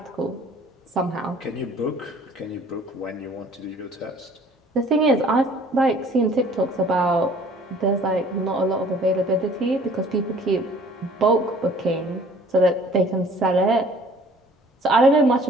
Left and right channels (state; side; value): normal; both; correlation 0.53